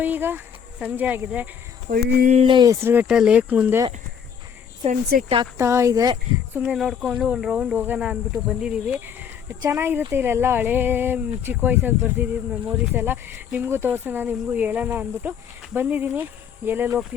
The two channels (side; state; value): right; quieter; 7.6 dB